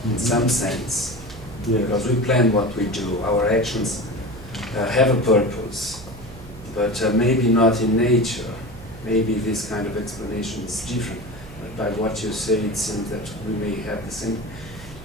in some sense, Yeah. because we plan what we do. Our actions have a purpose, but maybe not in nature. Maybe this kind of explanation is different. But by what you say, it seems that we may have the same.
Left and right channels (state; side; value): noise; right; hum, 16 dB below the sound